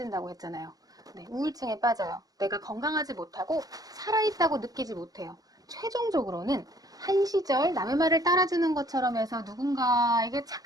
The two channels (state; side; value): late; left; 0.18 ms